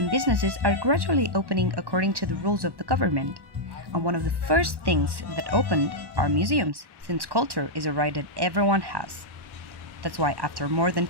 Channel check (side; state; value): left; late; 1.1 ms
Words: businesses are gradually opening according to the rules of the government. And one of the first things that opened are museums, since culture is a right that everyone has. That's why after more than